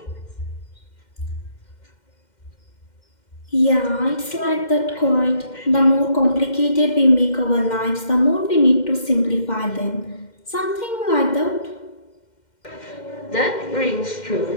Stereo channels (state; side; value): late; right; 2.1 ms